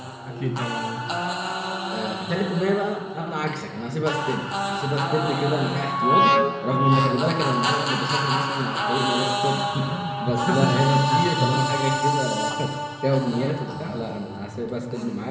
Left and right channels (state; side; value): identical; both; correlation 1.00